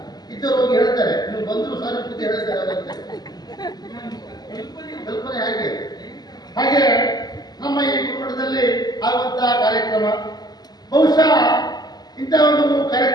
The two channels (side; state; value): right; late; 0.20 ms